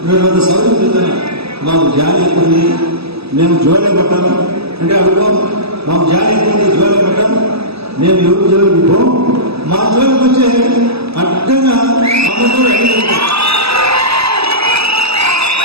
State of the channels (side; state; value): left; late; 0.78 ms